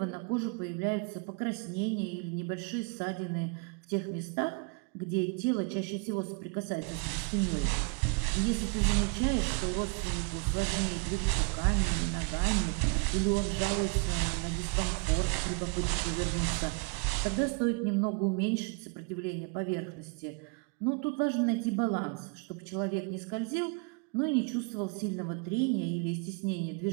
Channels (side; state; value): left; quieter; 32.8 dB